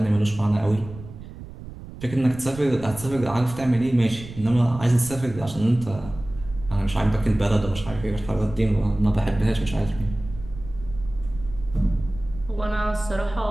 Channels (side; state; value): right; noise; rumble, 14 dB below the sound